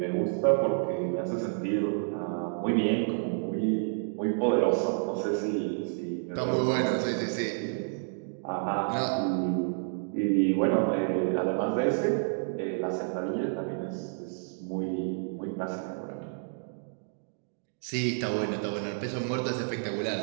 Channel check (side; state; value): left; silent; digital silence